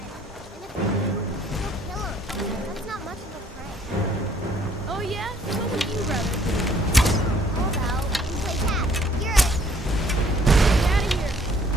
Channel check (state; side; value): normal; both; correlation 0.61